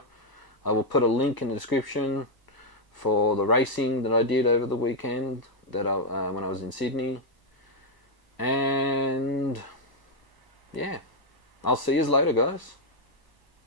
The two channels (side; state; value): right; late; 1.0 ms